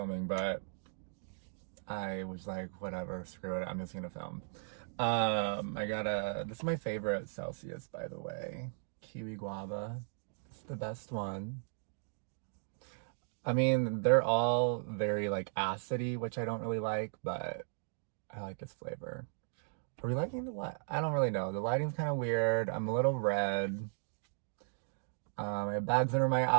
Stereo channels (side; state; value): left; silent; digital silence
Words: but I was like, whatever, screw it, I'm just gonna film. This is my favorite Celsius, by the way. Kiwi guava. It's the best one. I mean, they're all very like acidy, which I don't really like, but I like this flavor. Are we liking the light? I don't really know. The lighting's kind of weird. I'm a little red. I have bags under my